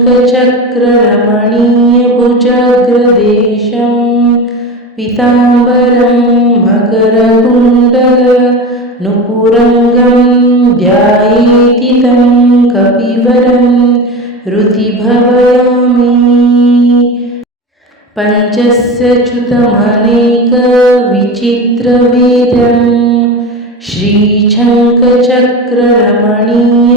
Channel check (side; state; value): both; normal; correlation 0.26